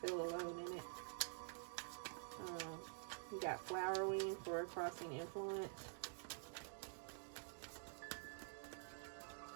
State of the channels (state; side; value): silent; left; digital silence